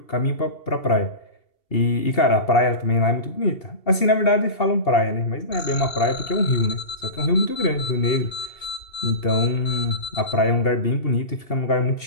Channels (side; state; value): right; late; 2.7 ms